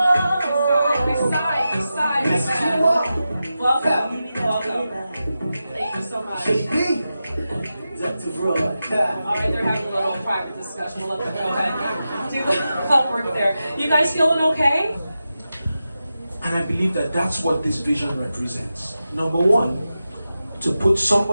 This side. Welcome. Thank you so much. All right, they're having a little private discussion. We'll let them go ahead do the homework there. You guys feeling okay? And I believe that that's what this vision represents. Number one, to put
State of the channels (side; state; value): both; inverted; correlation -0.91